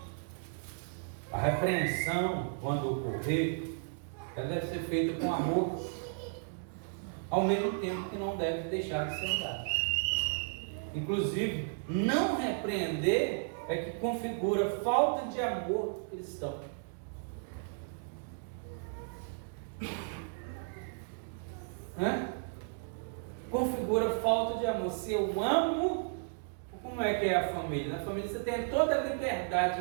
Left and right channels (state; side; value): silent; left; digital silence